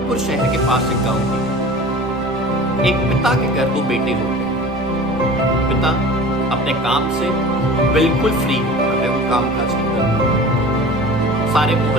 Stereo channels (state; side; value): normal; both; correlation 0.39